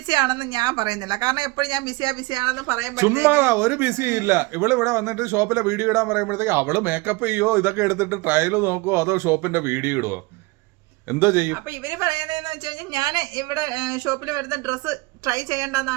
ആണെന്ന് ഞാൻ പറയുന്നില്ല, കാരണം എപ്പോഴും ഞാൻ ബിസിയാണെന്ന് പറയുമ്പോൾ ചുമ്മാ ഒരു ബിസി ഇല്ല. ഇവിടെ വന്നിട്ട് ഷോപ്പിലെ വീഡിയോ ഇടാൻ പറയുമ്പോഴത്തേക്ക് അവള് മേക്കപ്പ് ചെയ്യോ, ഇതൊക്കെ എടുത്തിട്ട് ട്രയൽ നോക്കുവോ, അതോ ഷോപ്പിന്റെ വീഡിയോ ഇടുവോ, എന്തോ ചെയ്യും? അപ്പൊ ഇവര് പറയുന്നതെന്ന് വെച്ച് കഴിഞ്ഞാൽ ഞാൻ ഇവിടെ ഷോപ്പിൽ വരുന്ന ഡ്രസ്സ് ട്രൈ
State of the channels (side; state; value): left; quieter; 23.5 dB